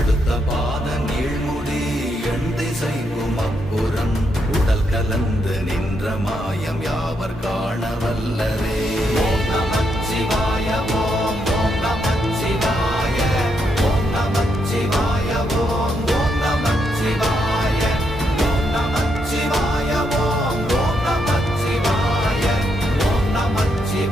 பாத நீழ்முடி எண் திசைக்கும் அப்புறம் உடல் கலந்து நின்ற மாயம் யாவர் காண வல்லரே. ஓம் நமச்சிவாய ஓம் ஓம் நமச்சிவாய ஓம் நமச்சிவாய ஓம் ஓம் நமச்சிவாய ஓம் நமச்சிவாய ஓம் ஓம் நமச்சிவாய ஓம்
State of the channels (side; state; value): both; normal; correlation 0.79